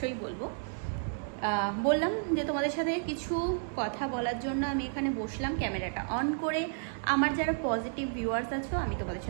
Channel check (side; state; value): left; silent; digital silence